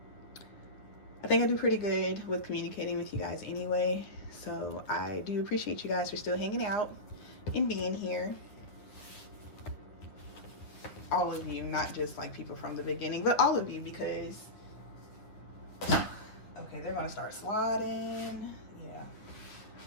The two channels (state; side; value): late; right; 9.6 ms